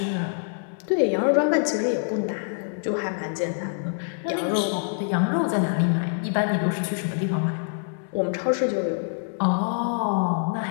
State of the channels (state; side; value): silent; right; 62 dB below the other